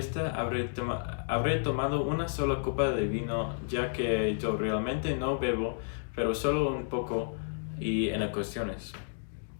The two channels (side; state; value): right; silent; digital silence